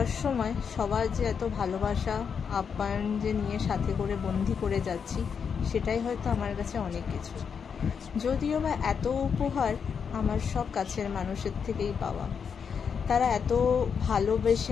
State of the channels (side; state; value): right; quieter; 6.6 dB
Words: সময় সবার যে এত ভালোবাসা আপ্যায়ন যে নিয়ে সাথে করে বন্দি করে যাচ্ছি, সেটাই হয়তো আমার কাছে অনেক কিছু। যদিও বা এত উপহার আমার সব কাছের মানুষের থেকেই পাওয়া। তারা এত ভালোবেসে